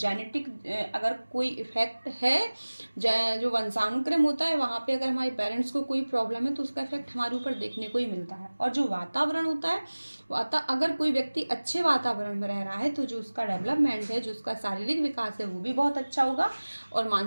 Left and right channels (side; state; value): both; inverted; correlation -1.00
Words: अगर कोई इफेक्ट है, जो वंशानुक्रम होता है वहाँ पे अगर हमारे पेरेंट्स को कोई प्रॉब्लम है तो उसका इफेक्ट हमारे ऊपर देखने को ही मिलता है। और जो वातावरण होता है, अगर कोई व्यक्ति अच्छे वातावरण में रह रहा है तो जो उसका डेवलपमेंट है, जो उसका शारीरिक विकास है वो भी बहुत अच्छा होगा। और